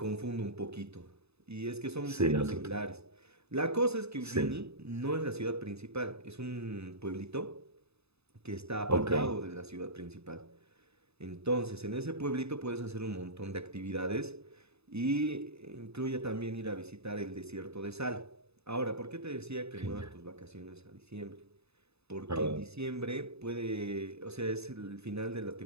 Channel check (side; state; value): left; late; 0.79 ms